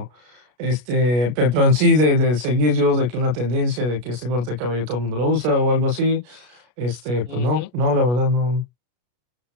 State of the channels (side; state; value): left; late; 33 ms